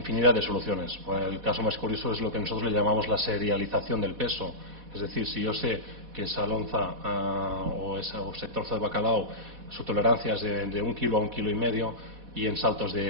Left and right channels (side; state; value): left; late; 4.1 ms